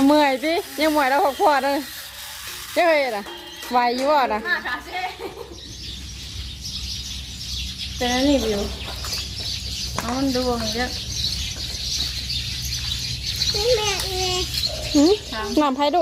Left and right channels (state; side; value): identical; both; correlation 1.00